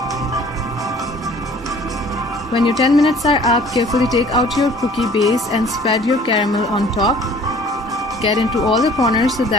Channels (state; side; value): normal; both; correlation 0.52